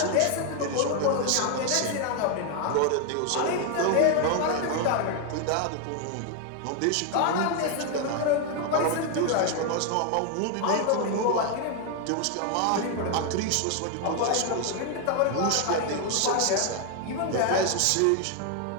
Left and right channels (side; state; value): both; different; correlation 0.01